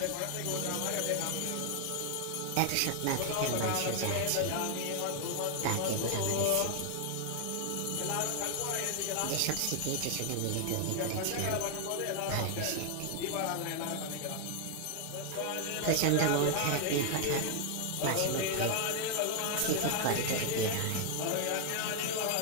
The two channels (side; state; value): both; different; correlation 0.00